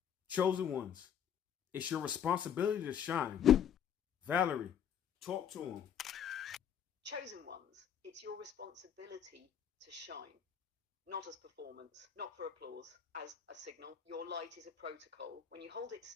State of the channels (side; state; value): right; quieter; 8.6 dB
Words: Chosen ones, it's your responsibility to shine. Valerie, talk to him. Chosen ones, it's your responsibility to shine. Not as performance, not for applause, as a signal. Your light is a protocol. When you hold it